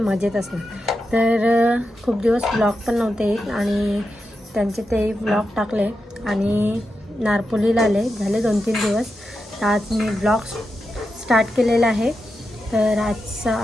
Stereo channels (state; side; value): normal; both; correlation 0.88